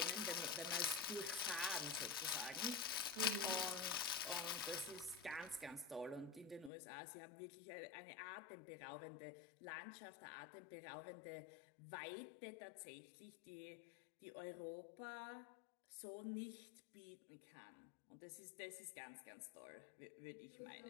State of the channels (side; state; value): right; drops out; at 6.7 s